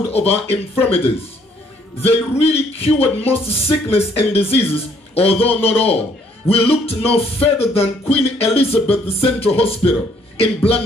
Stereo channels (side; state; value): both; normal; correlation 0.65